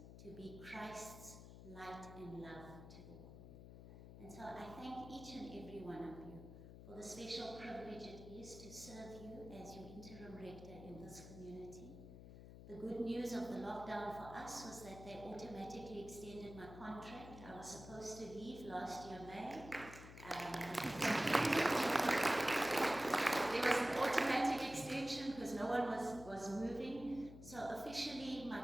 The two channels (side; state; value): left; noise; hum, 14 dB below the sound